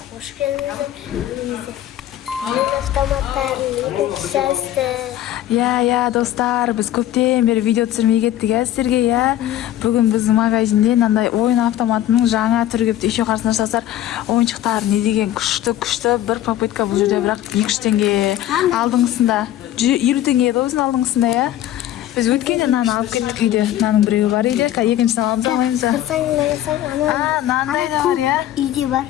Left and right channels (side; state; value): right; quieter; 12.8 dB